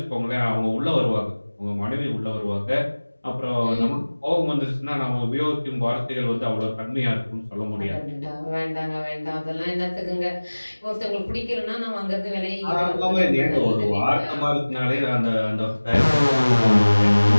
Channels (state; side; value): inverted; both; correlation -1.00